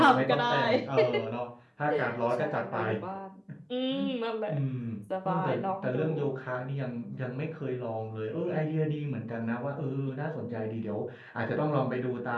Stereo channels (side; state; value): both; identical; correlation 1.00